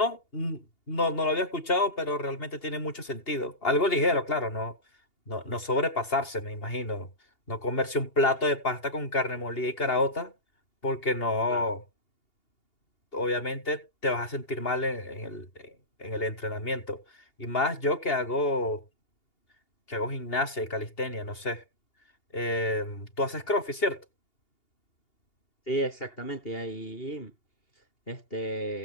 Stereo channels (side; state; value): right; late; 2.8 ms